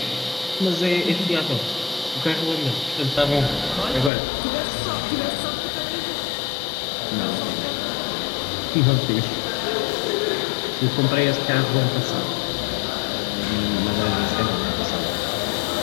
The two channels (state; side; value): drops out; right; at 4.1 s